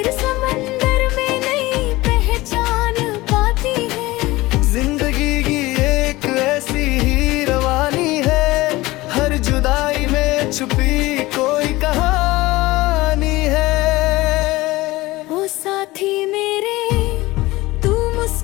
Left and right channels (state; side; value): quieter; right; 19.7 dB